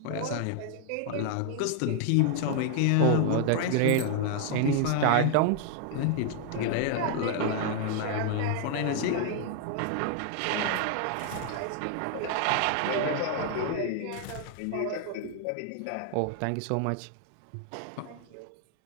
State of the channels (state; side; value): different; both; correlation 0.00